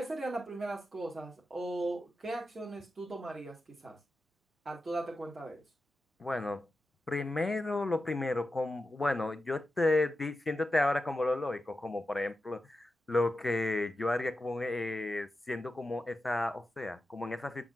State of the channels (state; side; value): normal; both; correlation 0.91